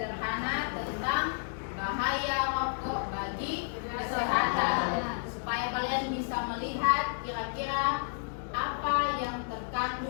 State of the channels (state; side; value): silent; right; digital silence